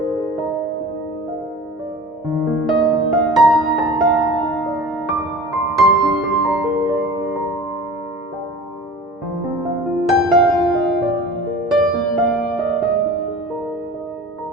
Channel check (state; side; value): normal; both; correlation 0.40